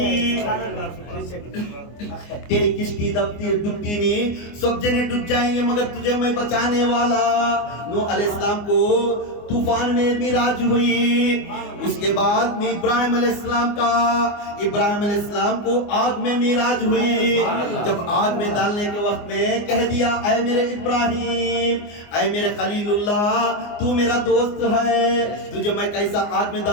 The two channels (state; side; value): late; right; 24 ms